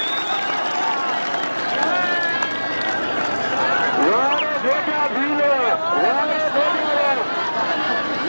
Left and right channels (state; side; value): inverted; both; correlation -1.00